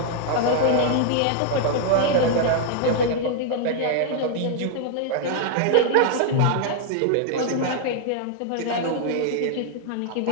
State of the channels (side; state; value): both; different; correlation -0.01